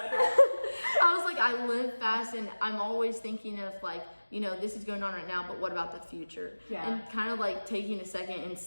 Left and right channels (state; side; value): inverted; both; correlation -1.00